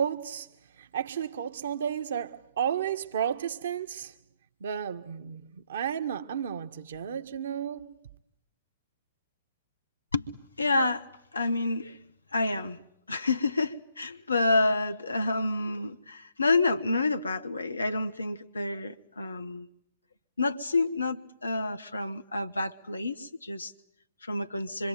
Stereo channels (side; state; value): both; inverted; correlation -0.77